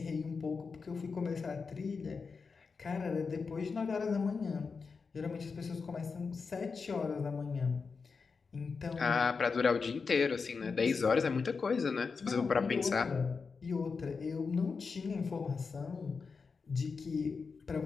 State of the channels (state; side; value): quieter; right; 5.0 dB